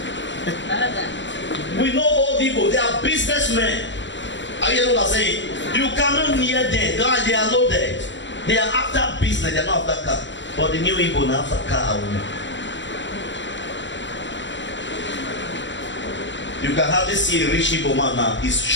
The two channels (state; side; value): late; right; 0.54 ms